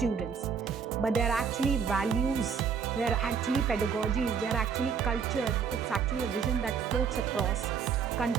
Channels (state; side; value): quieter; left; 6.5 dB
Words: but they're actually values, they're actually pedagogies, they're actually culture. It's actually a vision that floats across